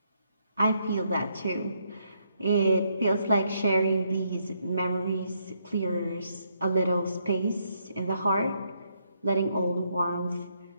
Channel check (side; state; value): both; inverted; correlation -0.75